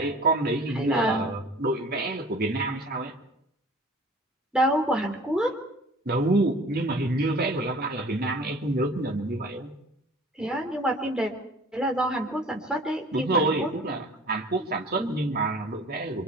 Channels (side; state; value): both; normal; correlation 0.47